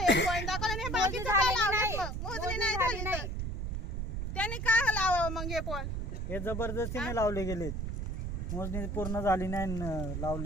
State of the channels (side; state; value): right; noise; rumble, 3 dB below the sound